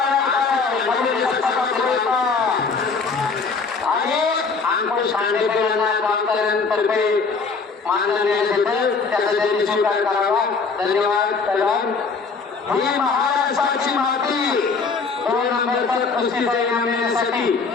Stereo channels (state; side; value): quieter; right; 4.7 dB